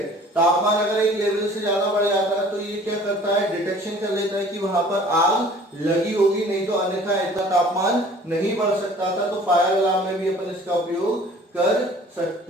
तापमान अगर एक लेवल से ज्यादा बढ़ जाता है तो ये क्या करता है? डिटेक्शन कर लेता है कि वहां पर आग लगी होगी, नहीं तो अन्यथा इतना तापमान नहीं बढ़ सकता था। तो फायर अलार्म में भी अपन इसका उपयोग कर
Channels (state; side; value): normal; both; correlation 0.49